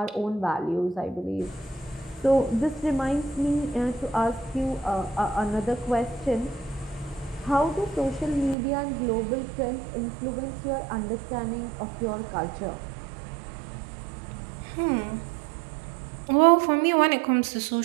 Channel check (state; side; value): drops out; left; at 8.6 s